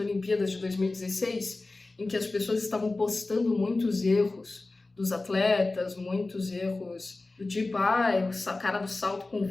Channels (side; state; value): right; quieter; 3.2 dB